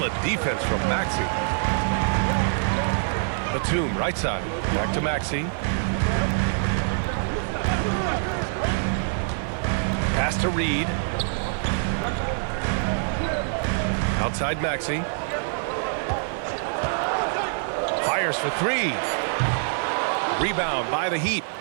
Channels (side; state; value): left; silent; 58 dB below the other